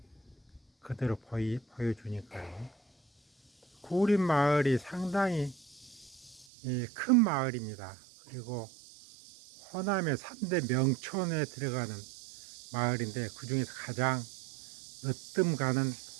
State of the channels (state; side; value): drops out; left; at 6.5 s